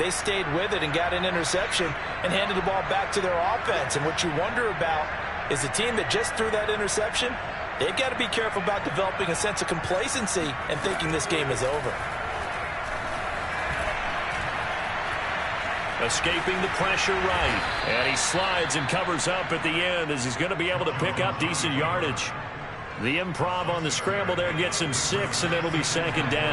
stayed with it and got an interception and handed the ball back to their offense. And what you wonder about is the team that just threw that interception, they've got to be careful about developing a sense of complacency and thinking this game is over. Escaping the pressure right. And he slides and covers up at the end as he's going to be able to pick up decent yardage. The improv on the scramble there gets him 6, and it'll be 2nd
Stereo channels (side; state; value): both; identical; correlation 1.00